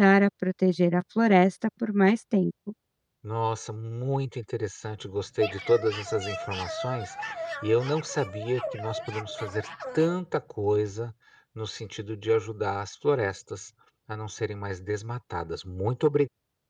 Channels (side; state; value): both; identical; correlation 1.00